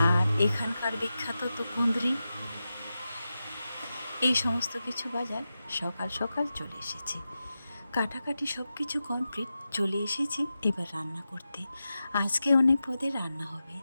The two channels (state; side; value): inverted; both; correlation -0.92